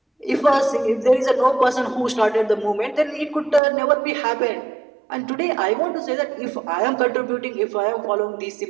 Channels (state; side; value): drops out; left; at 3.6 s